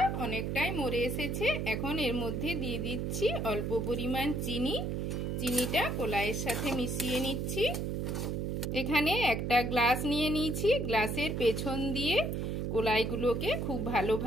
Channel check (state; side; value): noise; right; hum, 1 dB below the sound